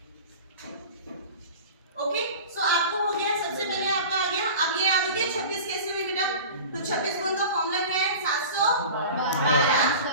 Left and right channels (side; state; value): both; inverted; correlation -0.37